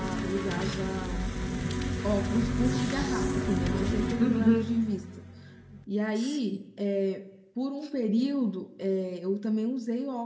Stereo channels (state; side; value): identical; both; correlation 1.00